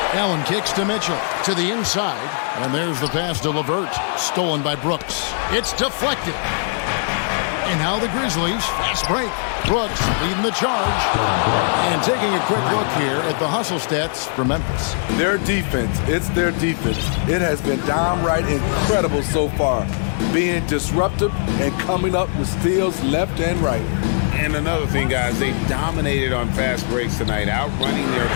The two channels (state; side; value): silent; right; 66 dB below the other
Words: Allen kicks to Mitchell to the inside. And there's the pass to LeVert. Stolen by Brooks. It's deflected. And now the Grizzlies. Fast break. Brooks leading the charge. And taking a quick look here at the hustle stats for Memphis. Their defense, it's their defense. It has been downright incredible so far. Being disruptive and coming up with steals left and right. And another thing, guys, they dominated on fast breaks tonight, outrunning their